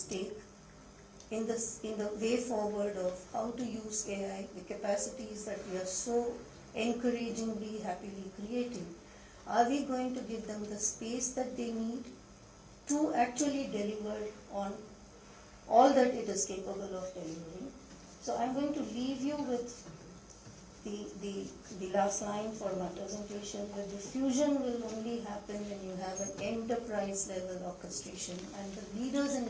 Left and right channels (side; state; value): both; identical; correlation 1.00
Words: take in the way forward of how to use AI, the capacities that we are so encouragingly, happily creating. Are we going to give them the space that they need to actually deliver on all that it is capable of delivering? So I'm going to leave you with the last line for my presentation. The diffusion will only happen when you have an enterprise level orchestration, and the leaders